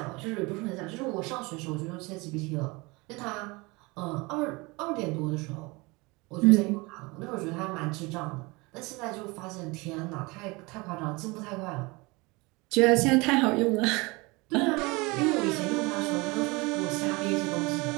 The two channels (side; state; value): left; quieter; 25.1 dB